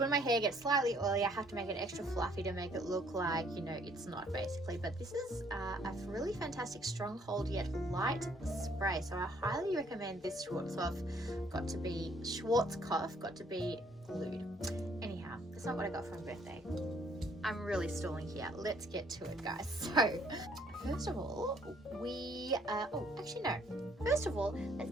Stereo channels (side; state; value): both; normal; correlation 0.63